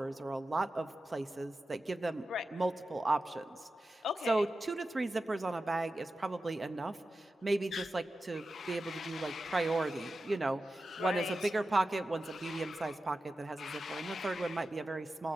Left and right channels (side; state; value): both; normal; correlation 0.92